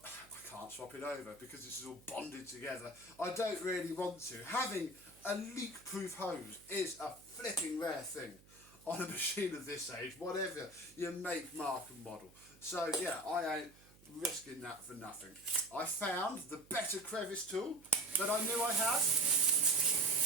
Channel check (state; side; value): noise; right; hum, 25 dB below the sound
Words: I can't swap it over because this is all bonded together. I don't really want to. Having a leak-proof hose is a flipping rare thing on a machine of this age, whatever your make, mark and model. So yeah, I ain't risking that for nothing. I found the better crevice tool that I knew I had.